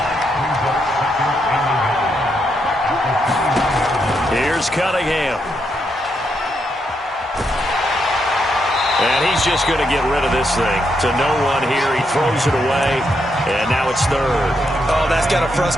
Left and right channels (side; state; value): both; normal; correlation 0.80